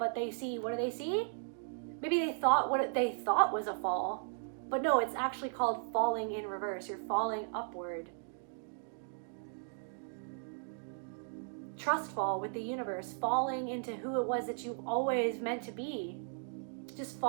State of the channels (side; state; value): left; silent; digital silence